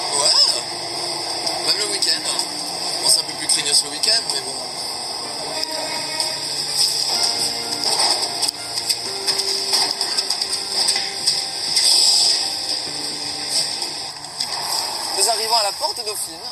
Ouais, même le week-end. Bon, c'est un peu plus craignos le week-end, mais bon. Nous arrivons à la porte Dauphine.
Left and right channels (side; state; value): both; identical; correlation 1.00